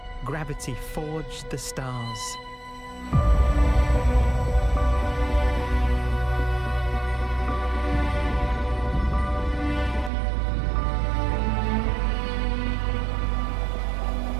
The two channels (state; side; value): drops out; left; at 10.1 s